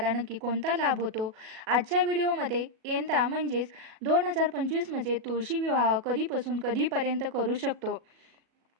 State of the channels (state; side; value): late; left; 37 ms